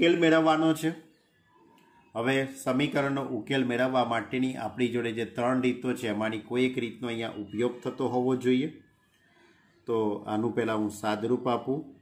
મેળવવાનો છે। હવે સમીકરણનો ઉકેલ મેળવવા માટેની આપણી જોડે જે 3 રીતો છે એમાંની કોઈ એક રીતનો અહીંયા ઉપયોગ થતો હોવો જોઈએ। તો આનું પહેલાં હું સાદરૂપ આપું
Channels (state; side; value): identical; both; correlation 1.00